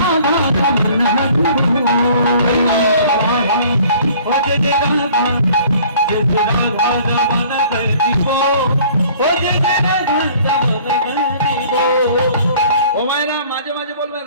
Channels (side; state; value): both; inverted; correlation -0.52